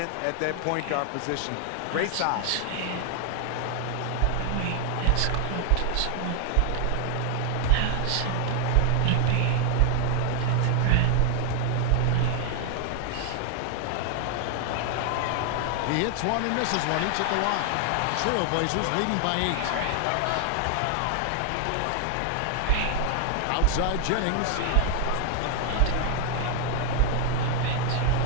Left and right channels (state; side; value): different; both; correlation 0.00